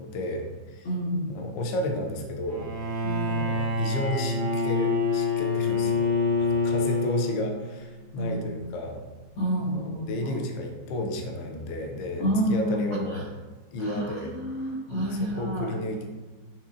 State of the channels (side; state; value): right; late; 15 ms